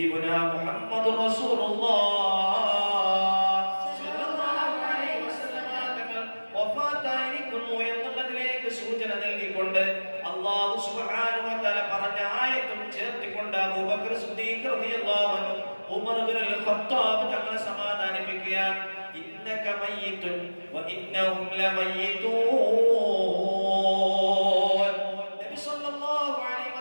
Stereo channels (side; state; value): both; inverted; correlation -1.00